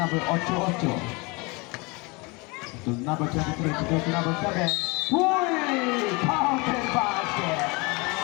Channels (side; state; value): right; quieter; 27.2 dB